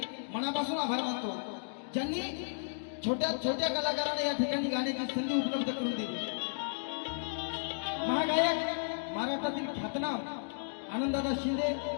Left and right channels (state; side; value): silent; right; digital silence